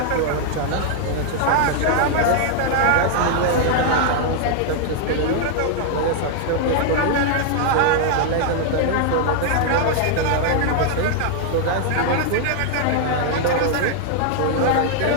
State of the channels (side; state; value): both; different; correlation 0.00